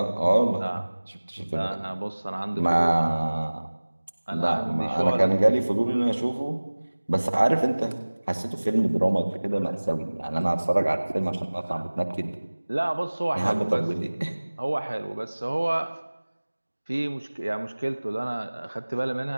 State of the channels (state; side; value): inverted; both; correlation -1.00